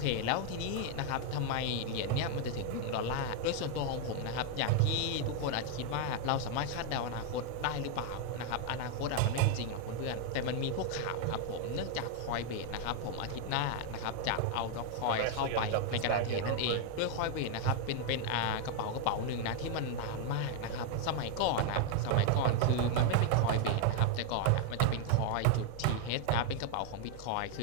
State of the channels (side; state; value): both; different; correlation 0.01